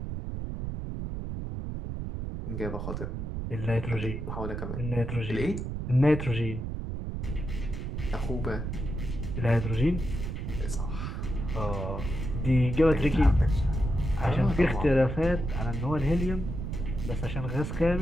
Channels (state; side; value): noise; right; rumble, 4 dB below the sound